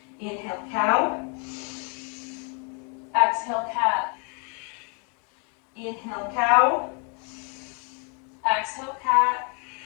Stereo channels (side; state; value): right; quieter; 37.6 dB